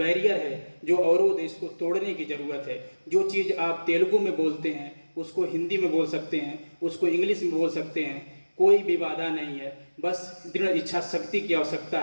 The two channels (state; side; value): inverted; both; correlation -1.00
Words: है, जो अवरोध है, इसको तोड़ने की ज़रूरत है। जो चीज़ आप तेलुगु में बोलते हैं उसको हिंदी में बोल सकते हैं, उसको इंग्लिश में बोल सकते हैं, कोई भी बाधा नहीं है। बस दृढ़ इच्छा शक्ति की आवश्यकता